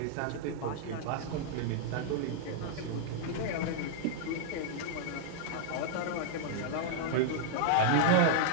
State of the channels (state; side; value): different; both; correlation -0.01